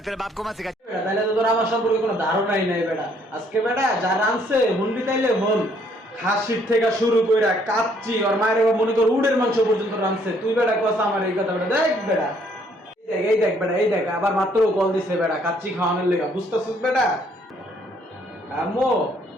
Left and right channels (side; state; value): both; normal; correlation 0.65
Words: तेरे बाप को मत सिखा। বেটা তাইলে তো তোর আমার সম্পর্কে কোনো ধারণাই নাই বেটা। আজকে বেটা যা রানছে হুনবি তাইলে হন, খাসির থেকে শুরু কইরা কাচ্চি আর মায়ের মনে কর উডের মাংস পর্যন্ত রানছে। তুই বেটা কস আমার এই কথা বেটা? দেখ বেটা, এই দেখ বেটা, এই দেখ আবার মাত্র কল দিছে বেটা কাচ্চি খাওয়ানোর লেগা, বুঝতেছিস বেটা? আম্মু